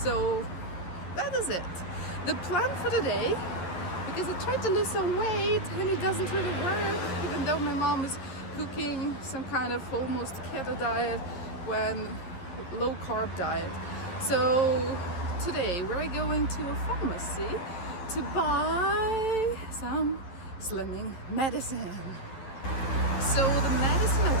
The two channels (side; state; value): right; late; 11 ms